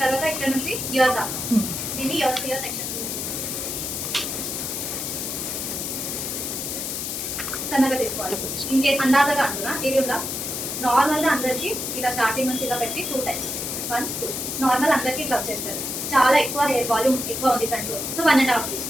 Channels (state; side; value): noise; left; hiss, 3 dB below the sound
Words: తర్వాత ఇక్కడ నుంచి ఇయర్ దా దీన్ని ఇయర్ సెక్షన్ సన్నగా తీసుకోవాలి. ఇన్ కేస్ అందాజగా అంటున్నా ఇది ఉందా, నార్మల్గా అందరికీ ఇలా స్టార్టింగ్ నుంచి ఇలా పెట్టి 2 టైమ్స్ 1 2 నార్మల్ అందరికీ ఇట్లా వచ్చేస్తుంది. చాలా ఎక్కువ హెయిర్ వాల్యూమ్ ఎక్కువ ఉంది ఫ్రంట్లో, సో 1.5